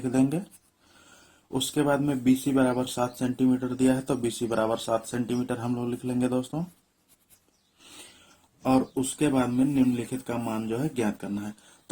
देंगे। उसके बाद में बी सी बराबर 7 सेंटीमीटर दिया है, तो बी सी बराबर 7 सेंटीमीटर हम लोग लिख लेंगे दोस्तों। और उसके बाद में निम्नलिखित का मान जो है ज्ञात करना है।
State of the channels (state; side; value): identical; both; correlation 1.00